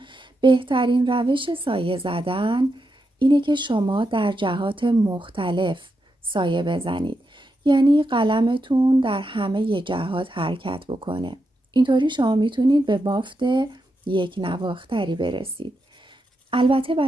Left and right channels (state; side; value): normal; both; correlation 0.85